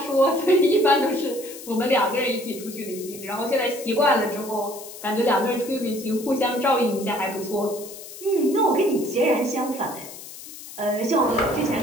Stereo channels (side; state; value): left; noise; hiss, 14 dB below the sound